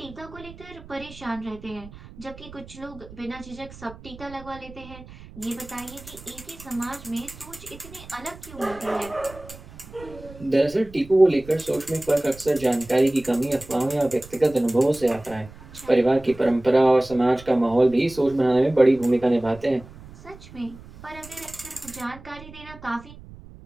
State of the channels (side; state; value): right; noise; rumble, 18 dB below the sound